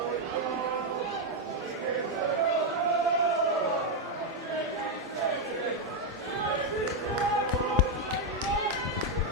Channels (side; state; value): both; normal; correlation 0.02